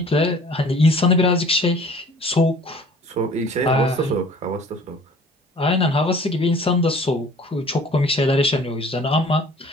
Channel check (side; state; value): both; normal; correlation 0.50